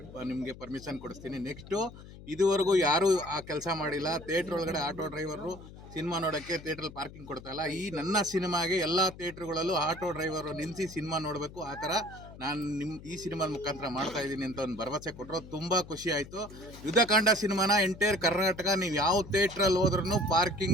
ನಿಮಗೆ ಪರ್ಮಿಷನ್ ಕೊಡಿಸ್ತೀನಿ. ನೆಕ್ಸ್ಟು ಇದುವರೆಗೂ ಯಾರೂ ಆ ಕೆಲಸ ಮಾಡಿಲ್ಲ. ಥಿಯೇಟ್ರ್ ಒಳಗಡೆ ಆಟೋ ಡ್ರೈವರು ಸಿನಿಮಾ ನೋಡೋಕ್ಕೆ ಥಿಯೇಟ್ರಲ್ಲಿ ಪಾರ್ಕಿಂಗ್ ಕೊಡ್ತಾಯಿಲ್ಲ. ಈ ನನ್ನ ಸಿನಿಮಾಗೆ ಎಲ್ಲ ಥಿಯೇಟ್ರುಗಳಲ್ಲೂ ಆಟೋ ಡ್ರೈವರು ನಿಲ್ಲಿಸಿ ಸಿನಿಮಾ ನೋಡಬೇಕು. ಆ ಥರ ನಾನು ಈ ಸಿನಿಮಾದ ಮುಖಾಂತರ ಮಾಡ್ತಾ ಇದ್ದೀನಿ ಅಂತ ಒಂದು ಭರವಸೆ ಕೊಟ್ಟರು. ತುಂಬ ಖುಷಿ ಆಯಿತು. ಯುದ್ಧಕಾಂಡ ಸಿನಿಮಾನ ಎಂಟೈರ್ ಕರ್ನಾಟಕ ನೀವು ಯಾವ ಥಿಯೇಟ್ರಲ್ಲಿ ಹೋದ್ರೂ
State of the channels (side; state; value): left; noise; hum, 17 dB below the sound